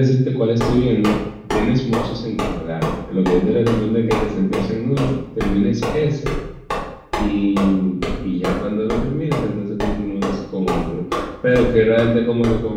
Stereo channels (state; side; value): identical; both; correlation 1.00